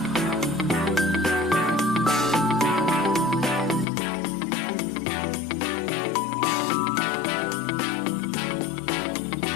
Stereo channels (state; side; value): drops out; right; at 3.9 s